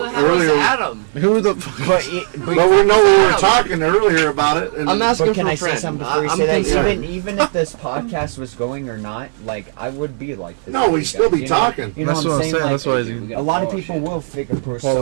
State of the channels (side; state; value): left; silent; 68 dB below the other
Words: earlier Adam. Who the fuck? But we were talking earlier about it. And I'm asking. But can I say something before you say that? thinking- Even if this podcast was going or not, like I would be like this. No, we'd still be talking. You know what I'm saying? Like, That's why a lot of people will figure